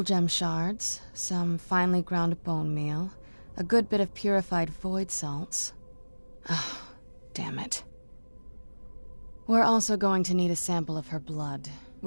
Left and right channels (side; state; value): both; inverted; correlation -1.00